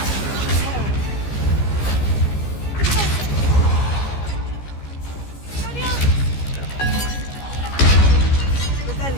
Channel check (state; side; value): late; right; 15 ms